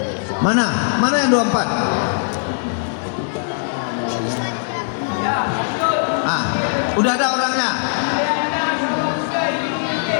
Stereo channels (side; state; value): right; silent; digital silence